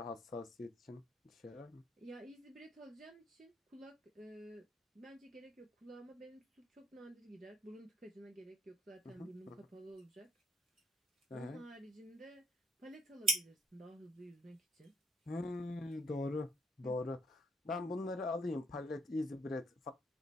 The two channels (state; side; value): normal; both; correlation 0.70